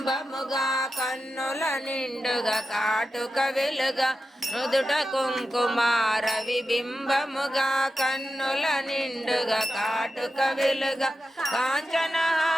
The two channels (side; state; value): both; normal; correlation 0.91